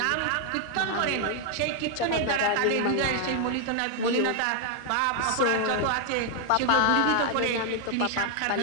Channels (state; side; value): different; both; correlation 0.00